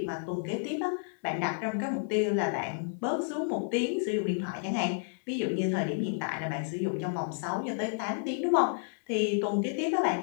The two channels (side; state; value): right; silent; 57 dB below the other